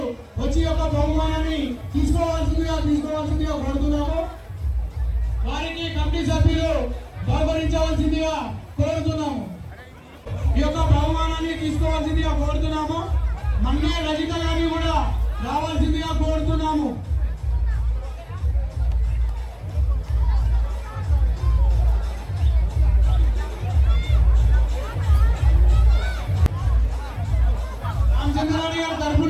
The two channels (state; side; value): identical; both; correlation 1.00